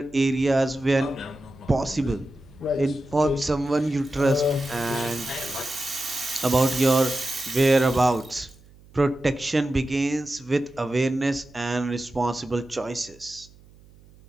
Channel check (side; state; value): right; noise; hum, 25 dB below the sound